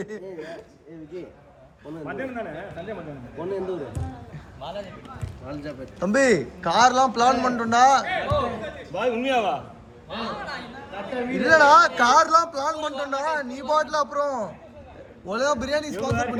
பொண்ணு எந்த ஊர்? வாலாஜாபேட். தம்பி கார்லாம் பிளான் பண்ணிட்டோம்டா. பாய் உண்மையாவா? இல்லடா கார்லாம் பிளான் பண்ணிட்டோம்டா. நீ பாட்டில் அப்புறம் ஒழுங்கா பிரியாணி ஸ்பான்சர்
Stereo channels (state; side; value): identical; both; correlation 1.00